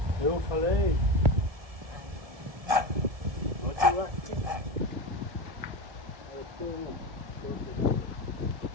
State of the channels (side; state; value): left; late; 1.7 ms